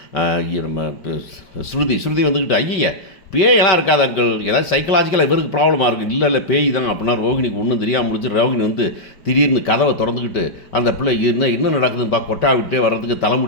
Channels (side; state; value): right; late; 5.2 ms